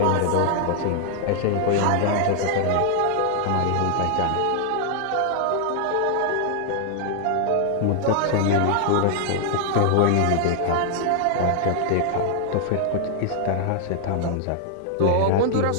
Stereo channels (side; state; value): both; different; correlation 0.00